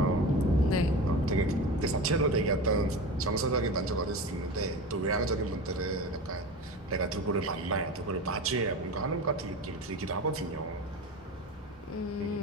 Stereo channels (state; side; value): normal; both; correlation 0.29